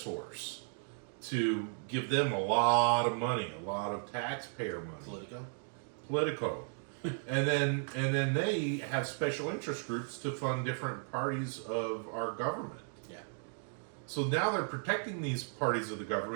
to give them a lot of money, a lot of taxpayer money. Politico. and then they have special interest groups to fund different parties of our government. Yeah. So now they're protecting these parties of the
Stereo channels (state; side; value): silent; left; 54 dB below the other